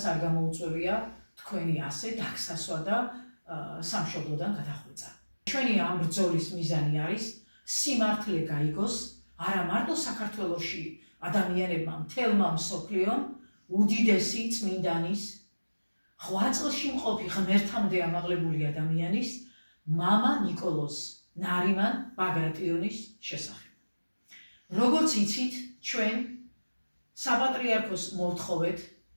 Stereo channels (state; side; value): inverted; both; correlation -1.00